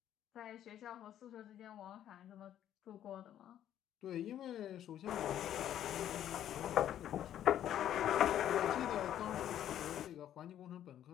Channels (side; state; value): right; quieter; 11.0 dB